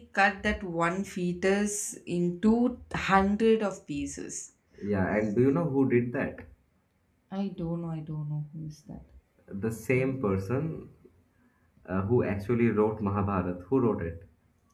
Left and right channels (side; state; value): both; identical; correlation 1.00